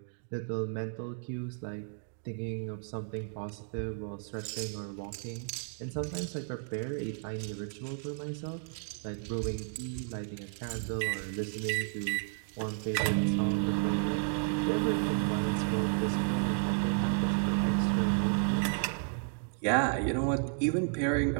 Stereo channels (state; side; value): silent; left; 56 dB below the other